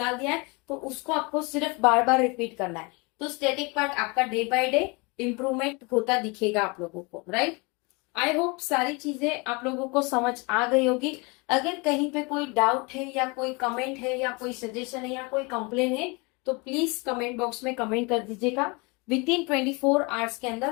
दिया है तो उसको आपको सिर्फ बार बार रिपीट करना है। तो स्टैटिक पार्ट आपका डे बाय डे इंप्रूवमेंट होता दिखेगा आप लोगों को, राइट। आई होप सारी चीजें आप लोगों को समझ आ गई होगी। अगर कहीं पे कोई डाउट है या कोई कमेंट है या कोई सजेशन है या कोई कंप्लेन है तो प्लीज कमेंट बॉक्स में कमेंट कर दीजिएगा। विद इन 24 आवर्स के अंदर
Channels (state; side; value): quieter; right; 28.6 dB